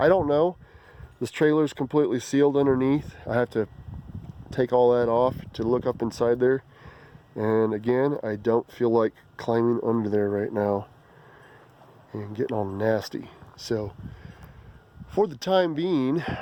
don't know. This trailer is completely sealed underneath. I have to take all that off to look up inside there. And again, I don't feel like climbing under there right now and getting all nasty. So for the time being,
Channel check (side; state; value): both; identical; correlation 1.00